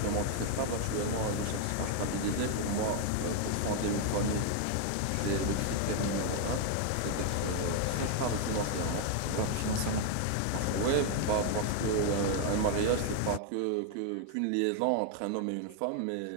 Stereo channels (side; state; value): both; different; correlation 0.00